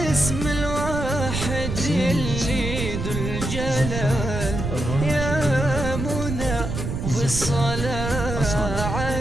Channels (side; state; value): right; noise; rumble, 4 dB below the sound